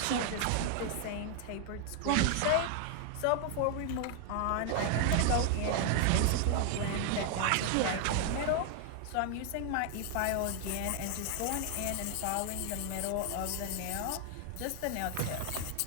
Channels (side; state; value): both; different; correlation 0.00